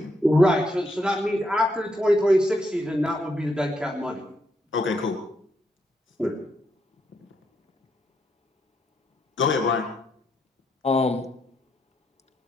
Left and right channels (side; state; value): both; normal; correlation 0.78